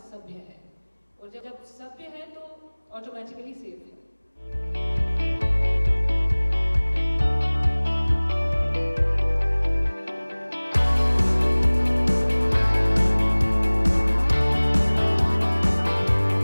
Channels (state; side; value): inverted; both; correlation -1.00